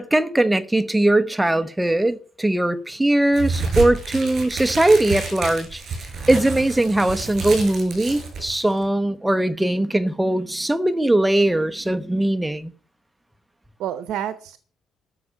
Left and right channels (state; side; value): normal; both; correlation 0.96